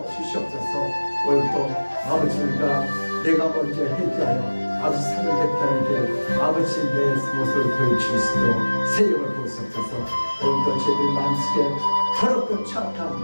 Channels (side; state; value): both; inverted; correlation -1.00